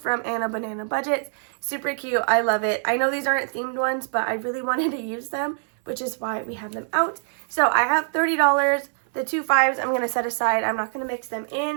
Anna Banana Budgets. Super cute. I love it. I know these aren't themed ones, but I really wanted to use them, which is why we have them out. So I have $30. The 2 5s I'm going to set aside. I'm not going to mix them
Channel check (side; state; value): left; silent; 62 dB below the other